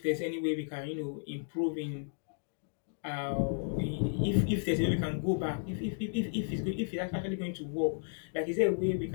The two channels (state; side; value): silent; right; digital silence